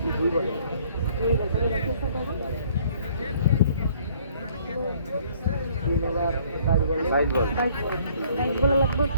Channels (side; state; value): both; inverted; correlation -0.59